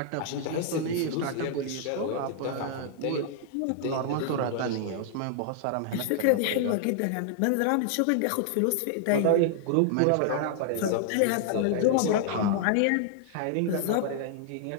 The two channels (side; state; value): both; different; correlation 0.00